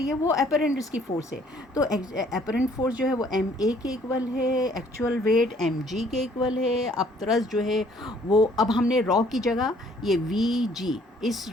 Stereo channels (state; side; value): normal; both; correlation 0.60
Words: है वो अपेरेंट इसकी फोर्स है। तो अपेरेंट फोर्स जो है वो MA के इक्वल है, एक्चुअल वेट MG के इक्वल है। अब तरस जो है वो, अब हमने रॉ की जगह ये VG, इस